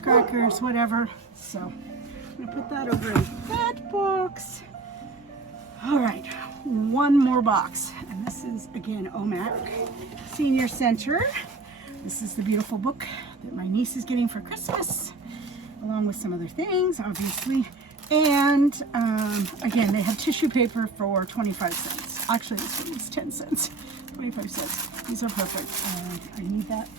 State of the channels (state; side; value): quieter; left; 3.7 dB